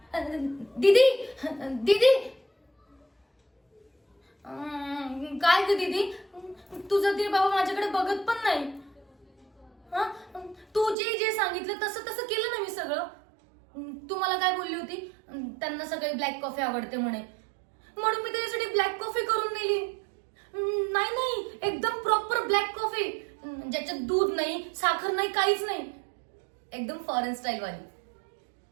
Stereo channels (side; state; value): left; drops out; at 11.0 s